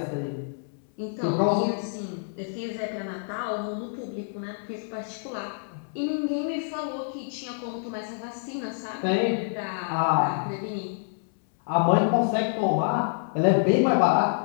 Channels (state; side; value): silent; right; 60 dB below the other